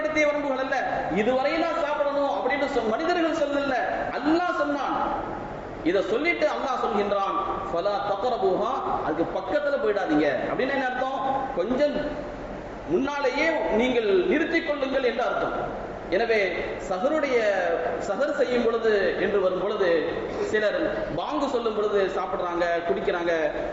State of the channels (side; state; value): both; identical; correlation 1.00